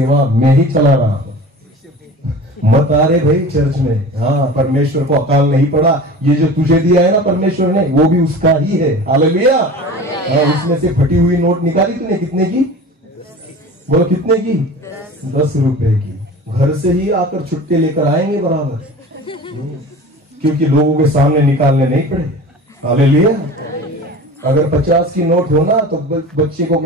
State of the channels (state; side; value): normal; both; correlation 0.37